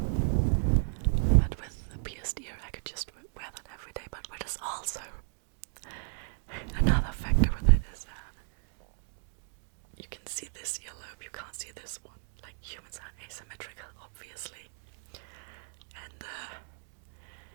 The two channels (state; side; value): silent; left; digital silence